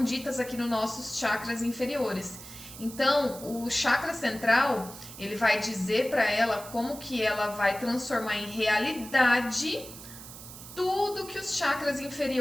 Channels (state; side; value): noise; right; hiss, 14 dB below the sound